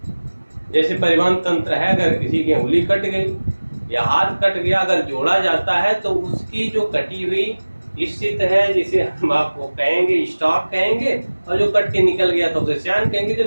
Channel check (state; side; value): inverted; both; correlation -1.00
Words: जैसे परिवहन तंत्र है, अगर किसी की उंगली कट गई या हाथ कट गया, अगर जोड़ा जाता है तो उसकी जो कटी हुई स्थिति है, जिसे हम आपको कहेंगे स्टॉक कहेंगे, और जो कट के निकल गया तो उसे श्यान कहेंगे।